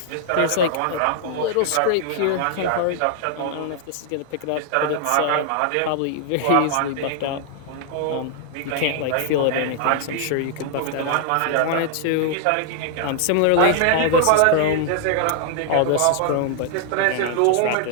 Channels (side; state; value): both; different; correlation 0.00